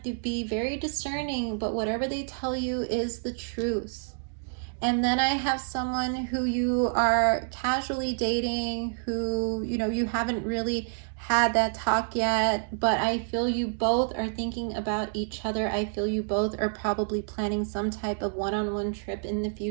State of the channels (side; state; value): left; silent; digital silence